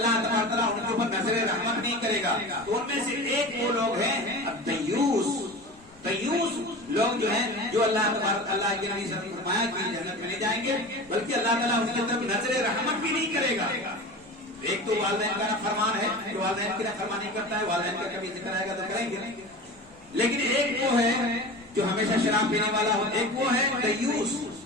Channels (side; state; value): left; noise; rumble, 28 dB below the sound